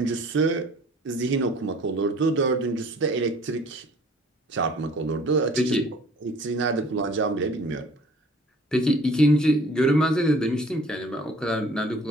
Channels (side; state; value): both; normal; correlation 0.51